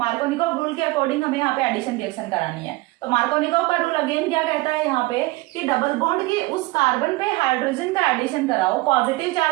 रूल के अकॉर्डिंग हमें यहाँ पे एडिशन रिएक्शन करानी है। तो मार्कोनिकॉफ का रूल अगेन क्या कहता है यहाँ पे कि डबल बॉन्ड के उस कार्बन पे हाइड्रोजन का एडिशन कराओ, पॉजिटिव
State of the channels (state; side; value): quieter; left; 21.4 dB